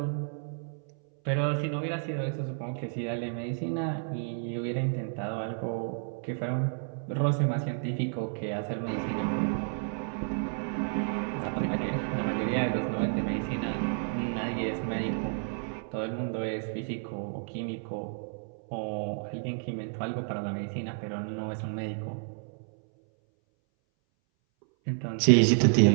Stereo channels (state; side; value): silent; left; 57 dB below the other